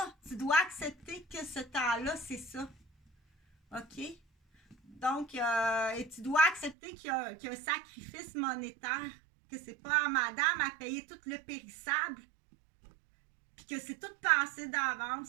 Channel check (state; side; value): drops out; left; at 6.8 s